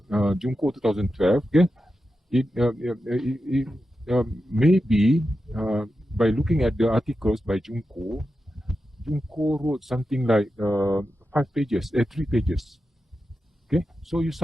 2012. Okay, it maybe by looking at the articles by Junko wrote something like 5 pages, 3 pages. Okay, so you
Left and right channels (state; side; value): normal; both; correlation 0.90